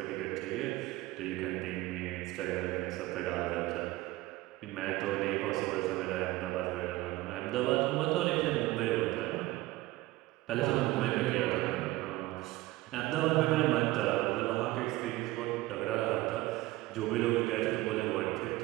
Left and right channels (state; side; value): quieter; left; 18.5 dB